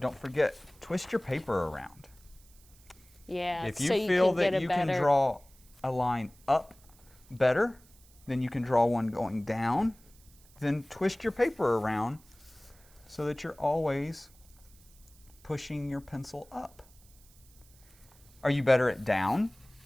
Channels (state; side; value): noise; right; hiss, 27 dB below the sound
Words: forget, twist your paper around. Yeah. If you feel that you can draw a line up better than you can draw one going down, then twist your paper around so that you're always pushing your pencil up. Are you better at down?